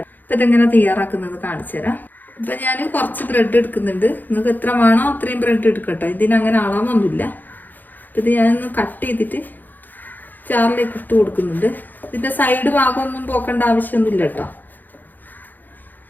അപ്പം ഇതെങ്ങനെ തയ്യാറാക്കുന്നത് കാണിച്ചു തരാം. ഇപ്പം ഞാൻ കുറച്ച് ബ്രെഡ് എടുക്കുന്നുണ്ട്. നിങ്ങൾക്ക് എത്ര വേണോ അത്രയും ബ്രെഡ് എടുക്കട്ടോ. ഇതിനങ്ങനെ അളവൊന്നുമില്ല. അപ്പം ഇത് ഞാനൊന്ന് കട്ട് ചെയ്തിട്ട് ചാറിലേക്ക് ഇട്ട് കൊടുക്കുന്നുണ്ട്. ഇതിൻ്റെ സൈഡ് ഭാഗമൊന്നും പോക്കേണ്ട ആവശ്യമൊന്നുമില്ല കേട്ടോ.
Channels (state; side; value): late; right; 0.086 ms